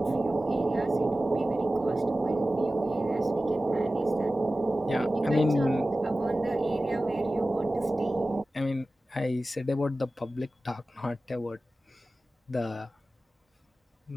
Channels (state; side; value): normal; both; correlation 0.96